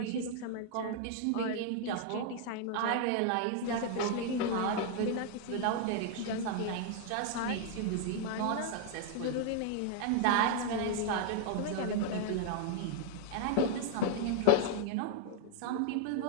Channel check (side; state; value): both; different; correlation 0.00